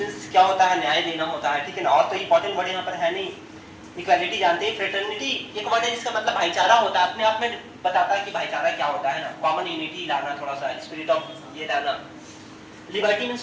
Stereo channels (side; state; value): both; identical; correlation 1.00